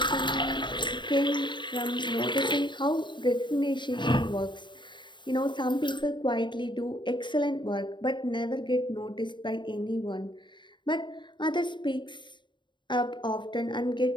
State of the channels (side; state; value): right; late; 0.23 ms